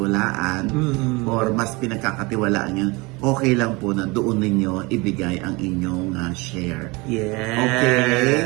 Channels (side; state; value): left; quieter; 25.5 dB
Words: or mas pinagkakatiwalaan nyo, okay lang po na doon ninyo ibigay ang inyong share. Yes.